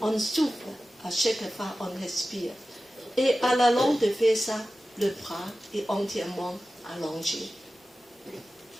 On souffre à chaque fois on respire. Et à la longue de faire ça, le bras est entièrement allongé.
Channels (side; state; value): both; normal; correlation 0.95